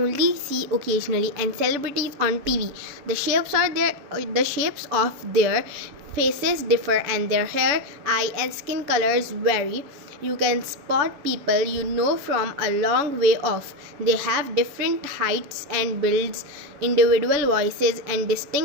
see occasionally, and celebrities on TV. The shapes of their faces differ, and their hair, eye, and skin colors vary. You can spot people you know from a long way off. They have different heights and builds, individual voices, and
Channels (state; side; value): late; left; 7.2 ms